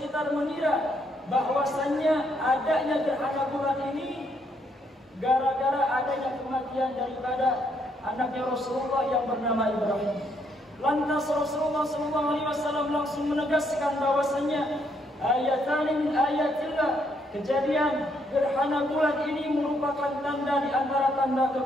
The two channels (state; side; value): normal; both; correlation 0.73